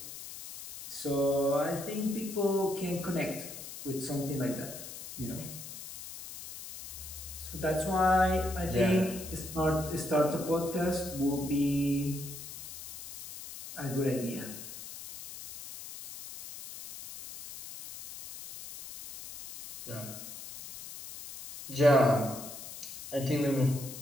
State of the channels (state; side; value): noise; left; hiss, 12 dB below the sound